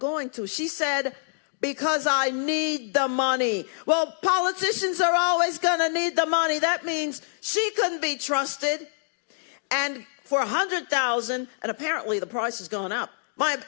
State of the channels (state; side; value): silent; right; digital silence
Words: to? She said, because I need the money. Well, politicians are always going to need the money. That means she couldn't be trusted. And for $100,000, and apparently the price has gone up. My